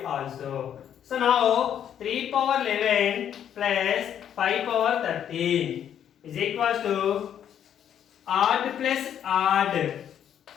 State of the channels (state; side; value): quieter; right; 9.5 dB